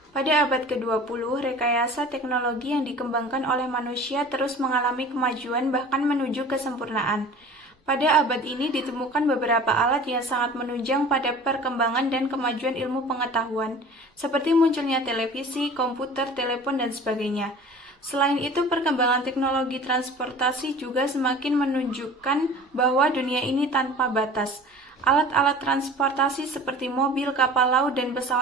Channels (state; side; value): normal; both; correlation 0.42